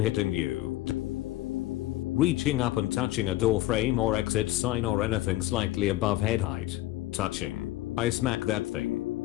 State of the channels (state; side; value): quieter; right; 16.2 dB